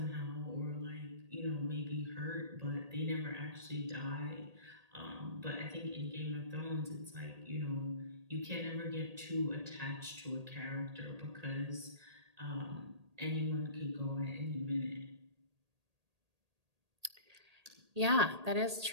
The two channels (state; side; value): late; left; 1.8 ms